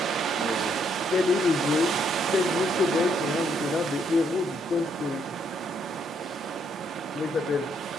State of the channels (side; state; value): both; normal; correlation 0.72